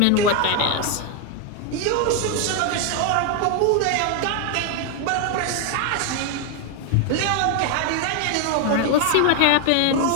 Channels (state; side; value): different; both; correlation 0.01